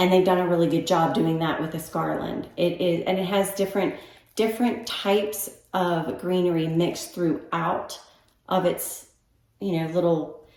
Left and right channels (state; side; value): identical; both; correlation 1.00